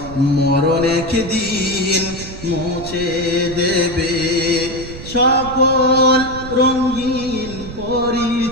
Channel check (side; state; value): right; noise; rumble, 12 dB below the sound